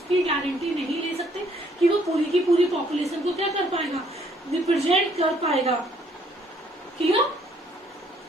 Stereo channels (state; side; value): normal; both; correlation 0.65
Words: गारंटी नहीं ले सकते कि वो पूरी की पूरी पॉपुलेशन को क्या कर पाएगा, रिप्रेजेंट कर पाएगा। Clear?